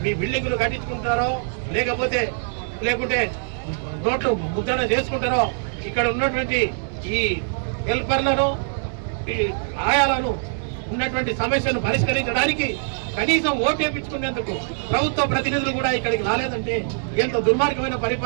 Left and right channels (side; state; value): left; silent; digital silence